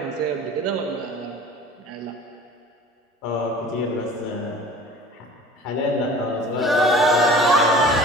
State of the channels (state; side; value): normal; both; correlation 0.44